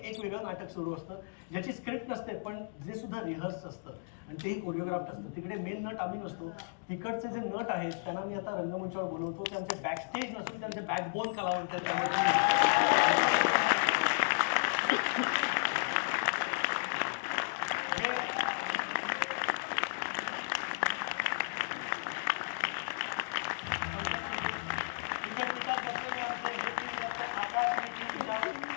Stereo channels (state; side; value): silent; right; digital silence